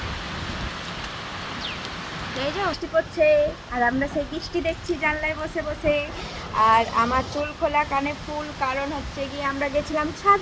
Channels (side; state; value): both; identical; correlation 1.00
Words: এই যে বৃষ্টি পড়ছে আর আমরা সেই বৃষ্টি দেখছি জানলায় বসে বসে। আর আমার চুল খোলা কানে ফুল, কারণ হচ্ছে গিয়ে আমরা গেছিলাম